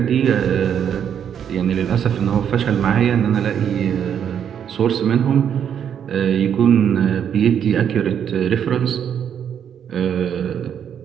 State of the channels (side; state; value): left; quieter; 8.6 dB